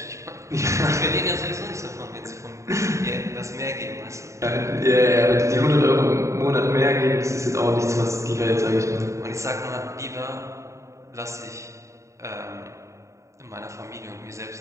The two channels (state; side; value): late; left; 0.14 ms